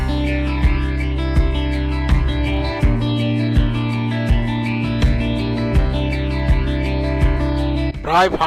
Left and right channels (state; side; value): identical; both; correlation 1.00